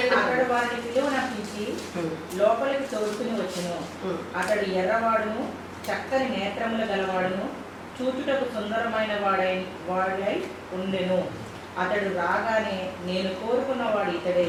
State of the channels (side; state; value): both; identical; correlation 1.00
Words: అతడు వారిని పిలువనపించి లోపలికి తోడుకుని వచ్చును. అతడు ఎర్రవాడును, చక్కని నేత్రముల గలవాడును, చూచుటకు సుందరమైన వాడై ఉండెను. అతడు రాగానే, నేను కోరుకున్నవాడు ఇతడే,